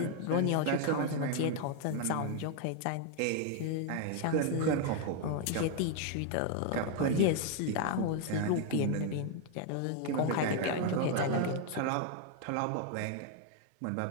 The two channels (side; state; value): both; different; correlation 0.00